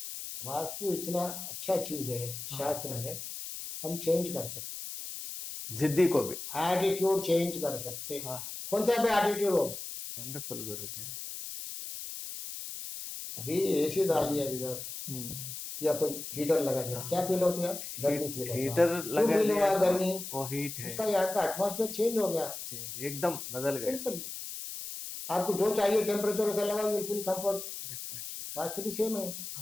वास्तु इतना अच्छा चीज है, शास्त्र है, हम चेंज कर सकते, जिद्दी को भी एटीट्यूड चेंज कर सकते। कौन सा पे एटीट्यूड हो? वंडरफुल गुरुजी। अभी एसी डाल दिया इधर, या कोई हीटर लगा दिया, क्या फील होती है? गर्मी फील होता है। हीटर क्यों फील हुआ गर्मी? वो हीट है, उसका यहाँ का एटमॉस्फेयर चेंज हो गया, चेंज एकदम बदल गया। सिंपल, आपको जो चाहिए टेम्परेचर ऐसा लगाओ, यू फील कंफर्ट। वास्तु भी सेम है,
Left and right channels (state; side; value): noise; left; hiss, 8 dB below the sound